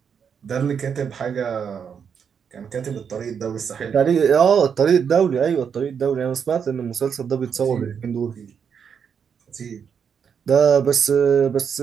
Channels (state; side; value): quieter; left; 7.1 dB